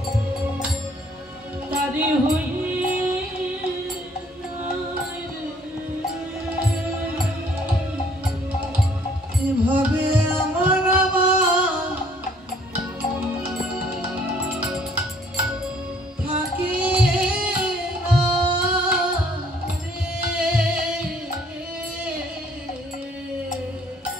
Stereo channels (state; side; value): normal; both; correlation 0.60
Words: তারে হই এভাবে আমার থাকে